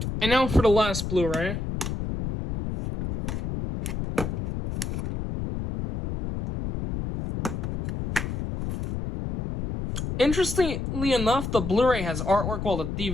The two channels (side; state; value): left; noise; rumble, 4 dB below the sound